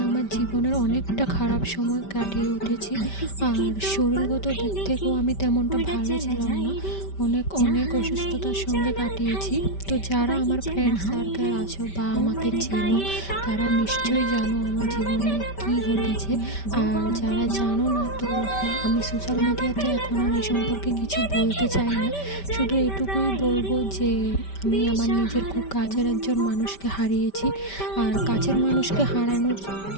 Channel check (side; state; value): right; late; 5.1 ms